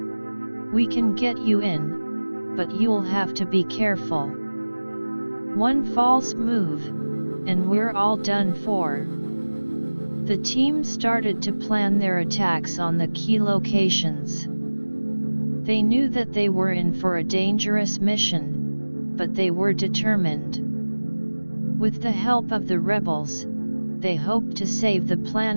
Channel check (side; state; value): both; inverted; correlation -1.00